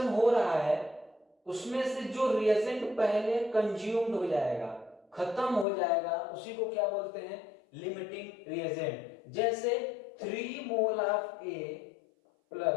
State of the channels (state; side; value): drops out; right; at 5.7 s